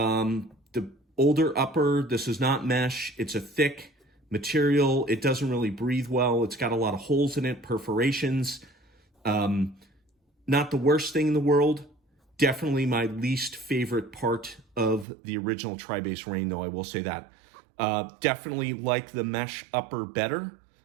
older upper, this is not mesh, it's a thick material, it doesn't really breathe well, it's got a lot of holes in it, perforations. Not the worst thing in the world, definitely my least favorite part of the original TriBase Reign, though, I will say that. Definitely like the mesh upper better.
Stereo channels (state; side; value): drops out; left; at 15.1 s